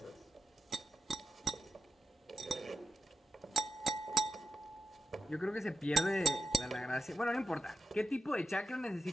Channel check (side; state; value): both; normal; correlation 0.89